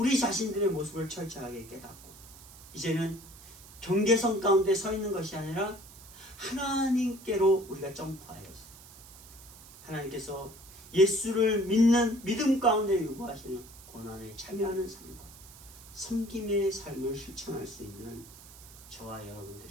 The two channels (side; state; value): right; noise; hiss, 19 dB below the sound